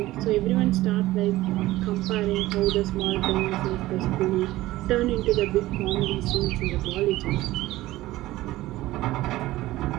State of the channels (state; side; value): quieter; left; 17.0 dB